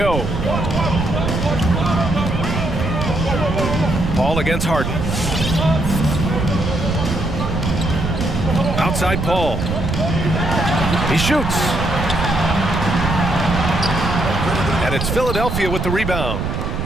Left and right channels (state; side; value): noise; right; rumble, 3 dB below the sound